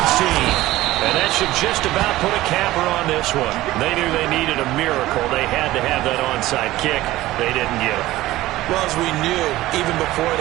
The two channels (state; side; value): quieter; left; 16.7 dB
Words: team. And that should just about put a capper on this one. They knew they needed a miracle. They had to have that onside kick. They didn't get it. Well, as we knew, even before